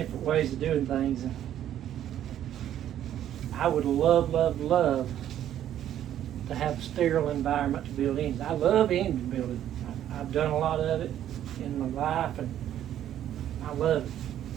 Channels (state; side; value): quieter; left; 11.2 dB